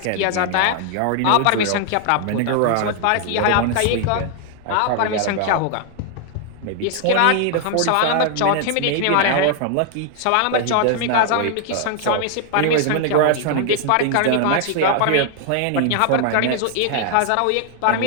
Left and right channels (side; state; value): both; different; correlation 0.00